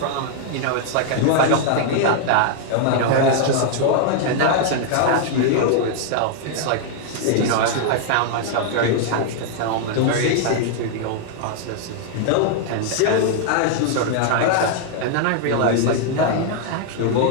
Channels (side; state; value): both; different; correlation -0.01